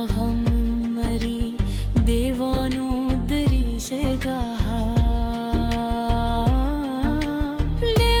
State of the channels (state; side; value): identical; both; correlation 1.00